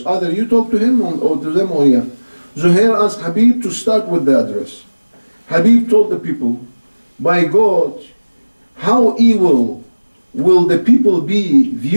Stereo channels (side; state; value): both; inverted; correlation -1.00